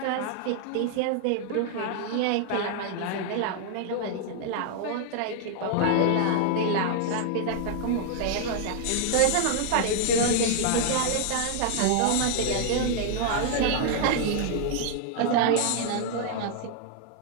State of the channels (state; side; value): different; both; correlation 0.00